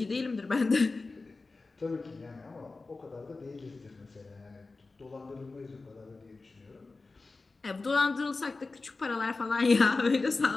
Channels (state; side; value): quieter; right; 3.7 dB